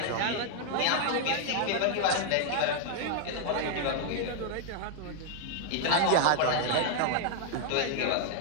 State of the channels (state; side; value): different; both; correlation 0.00